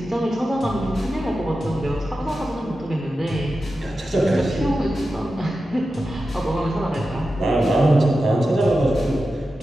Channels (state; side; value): normal; both; correlation 0.92